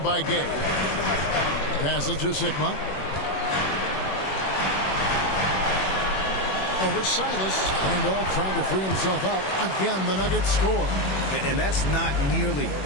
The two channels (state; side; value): late; right; 21 ms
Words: by Gay. Passes to Sigma. Over Silas. Randolph trying to free himself up. Again, the Nuggets score. And that's not nearly